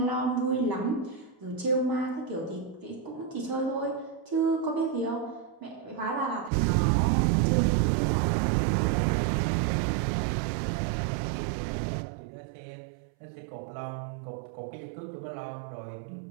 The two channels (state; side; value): drops out; left; at 6.5 s